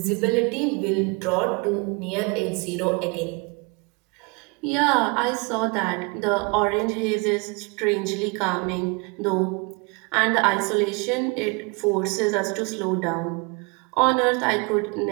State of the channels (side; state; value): left; quieter; 30.1 dB